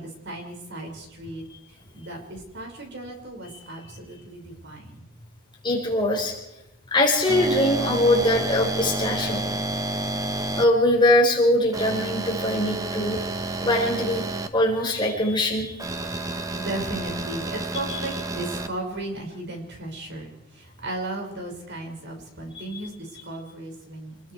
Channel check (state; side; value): normal; both; correlation 0.37